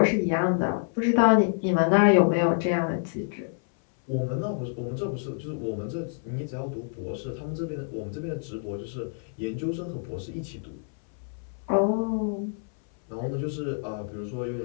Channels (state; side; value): silent; right; 60 dB below the other